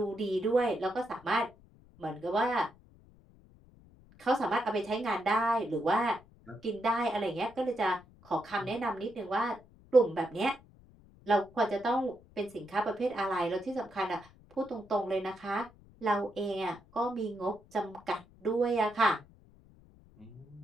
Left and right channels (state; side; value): noise; left; rumble, 26 dB below the sound